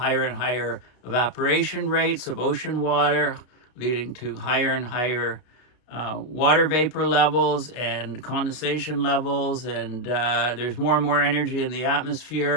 and higher evaporation rates of ocean water, leading to higher and higher water vapor levels and condensation levels, and there's more and more energy in the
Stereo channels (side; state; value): right; late; 32 ms